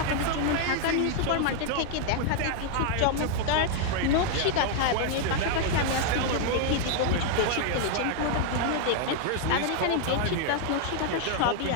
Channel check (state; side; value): different; both; correlation 0.00